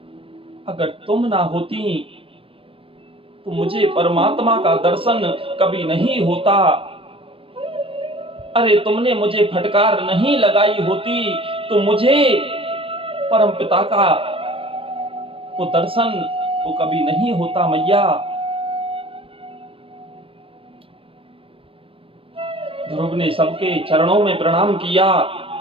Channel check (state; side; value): late; left; 0.26 ms